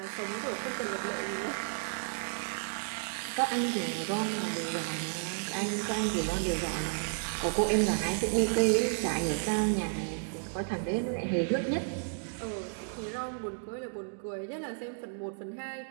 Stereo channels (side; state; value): left; silent; digital silence